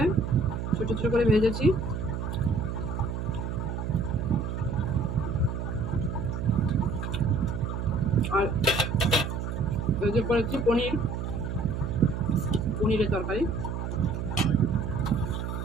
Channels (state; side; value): noise; right; hum, 4 dB below the sound